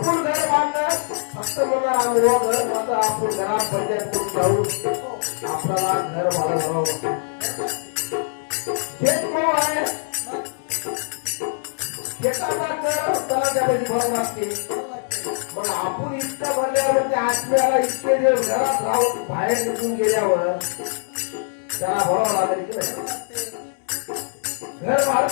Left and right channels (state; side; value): silent; right; 64 dB below the other